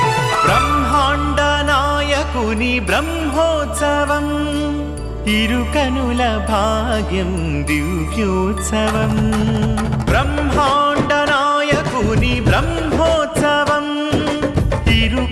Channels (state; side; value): identical; both; correlation 1.00